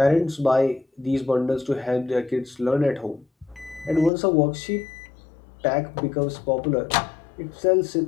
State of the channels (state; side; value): drops out; right; at 4.1 s